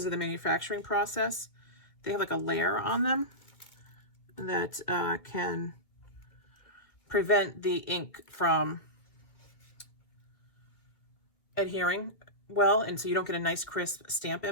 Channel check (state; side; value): late; right; 2.1 ms